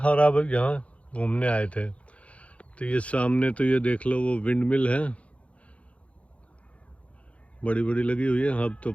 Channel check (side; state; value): right; late; 0.063 ms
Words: और अब यहाँ घूमने आए थे। तो ये सामने तो ये देख लो, वो विंड मिल है, बड़ी बड़ी लगी हुई है। अब तो